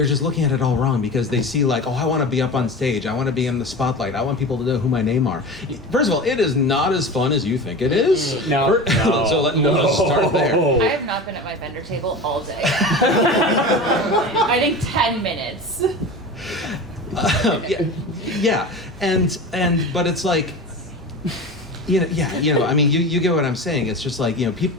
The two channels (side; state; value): both; normal; correlation 0.30